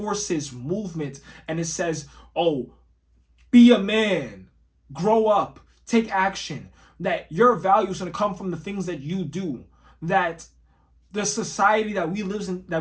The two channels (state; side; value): identical; both; correlation 1.00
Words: movement and it says, oh, be a man, grow up, take action, that your value is going to come from the things that you do, that the society that we